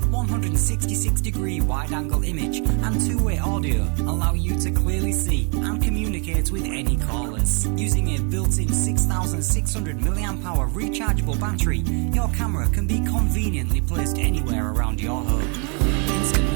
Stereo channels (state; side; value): quieter; left; 36.6 dB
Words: 166-degree wide-angle image and two-way audio allow you to clearly see and communicate with any callers. Using a built-in 6600 mAh rechargeable battery, your camera can be conveniently placed anywhere around your home. Instant